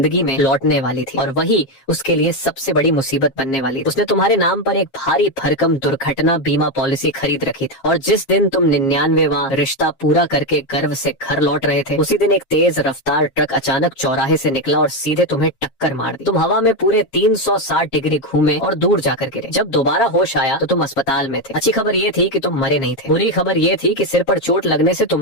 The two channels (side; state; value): right; late; 7.5 ms